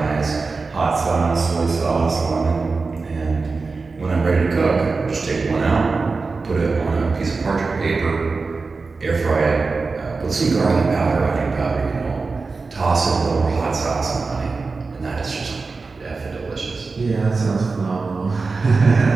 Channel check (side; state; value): left; quieter; 4.2 dB